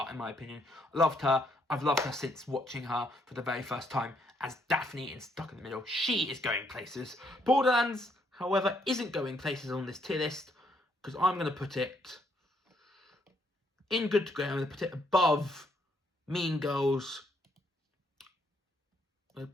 in my opinion. I loved her. I've loved her since watching her for the very first time as Daphne in Stuck in the Middle. She is going places. Borderlands, however, isn't going places on this tier list because I'm going to put it in good to great. I'm going to put it above Mean Girls. I'm going to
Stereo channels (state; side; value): normal; both; correlation 0.72